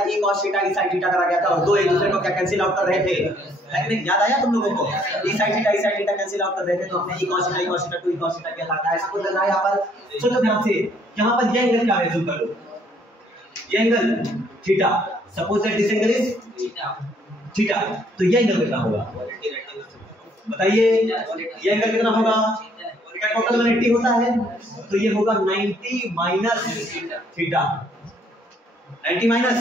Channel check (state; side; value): normal; both; correlation 0.65